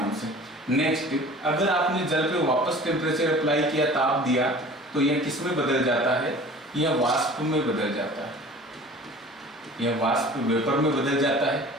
से। नेक्स्ट, अगर आपने जल पे वापस टेम्परेचर अप्लाई किया, ताप दिया, तो यह किस में बदल जाता है, यह वाष्प में बदल जाता है, यह वाष्प वेपर में बदल जाता है।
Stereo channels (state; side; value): normal; both; correlation 0.43